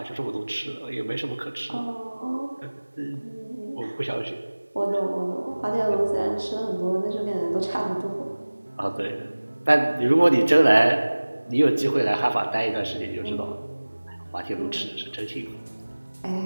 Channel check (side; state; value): both; inverted; correlation -1.00